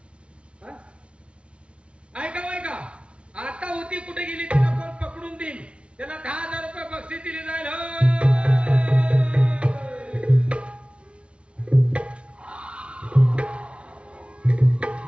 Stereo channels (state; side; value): late; left; 0.059 ms